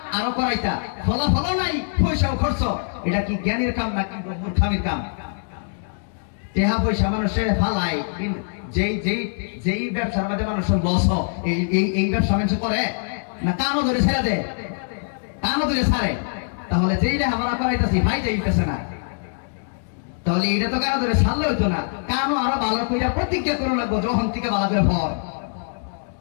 আরো করাইতা, ফলাফল নাই, পয়সাও খরচ। এটা কি জ্ঞানের কাম নাকি মূর্খামির কাম? টেহা পয়সা মানুষের ফালাই, যেই ব্যবসার মধ্যে মানুষের লস এই ব্যবসা মানুষ করে না, কানও ধরে ছেড়ে দেয়, কানও ধরে ছাড়ে। তাহলে যেই লেখাপড়া করাইতেছি ভাই যাইতেছে না, তাহলে এটা তো কারো ধরে ছাড়লে হইতো না, কানও আরো ভালো করে প্রতিজ্ঞা করে লাগবো যখন থেকে ভালো করে ফল।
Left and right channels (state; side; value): silent; right; digital silence